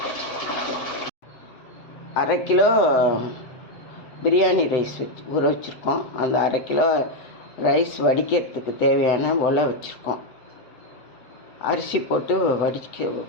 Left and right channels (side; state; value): right; late; 7.6 ms